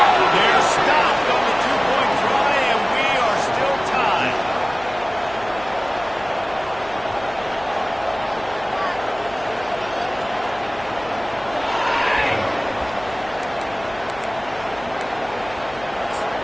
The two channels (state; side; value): noise; left; hum, 20 dB below the sound